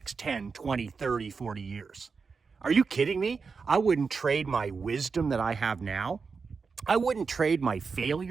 10, 20, 30, 40 years. Are you kidding me? I wouldn't trade my wisdom that I have now. I wouldn't trade my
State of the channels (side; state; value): left; quieter; 5.1 dB